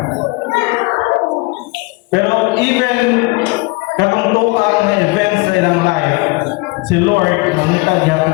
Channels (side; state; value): right; quieter; 25.6 dB